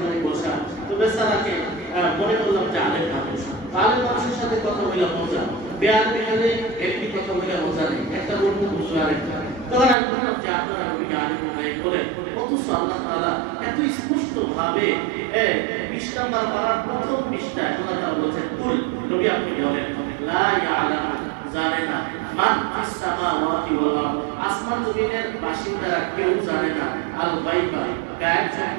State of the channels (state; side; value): drops out; left; at 10.0 s